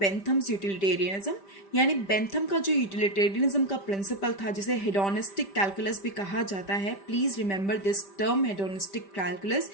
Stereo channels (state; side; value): late; right; 5.1 ms